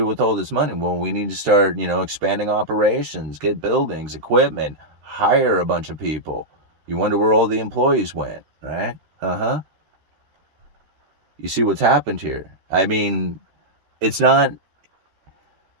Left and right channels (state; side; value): late; left; 13 ms